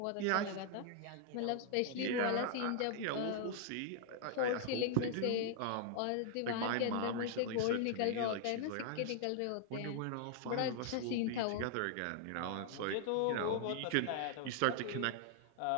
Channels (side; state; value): both; different; correlation 0.00